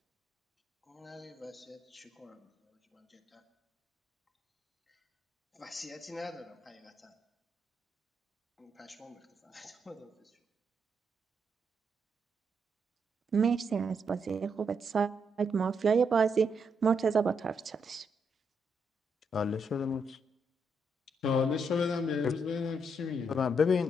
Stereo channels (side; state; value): both; normal; correlation 0.78